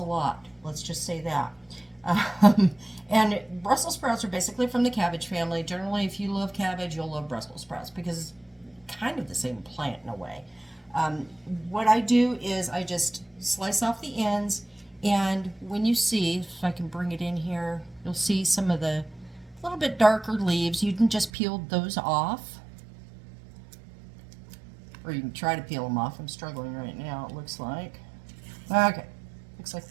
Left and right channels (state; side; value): drops out; left; at 21.3 s